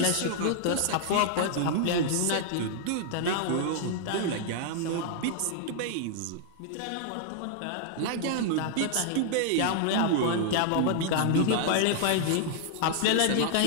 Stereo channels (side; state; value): both; different; correlation -0.01